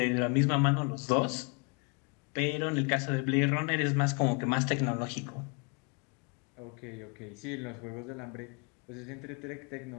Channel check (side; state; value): right; quieter; 33.3 dB